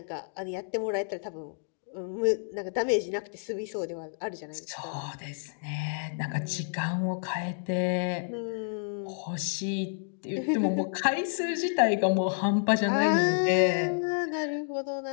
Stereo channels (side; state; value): right; silent; digital silence